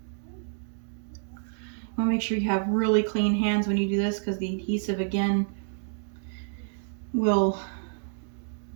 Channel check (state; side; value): silent; left; digital silence